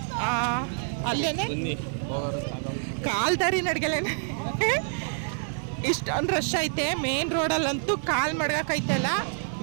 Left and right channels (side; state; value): left; silent; 60 dB below the other